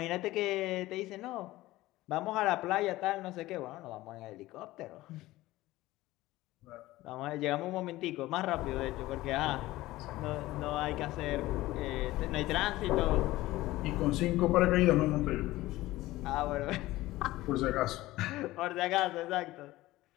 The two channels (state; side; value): quieter; right; 17.5 dB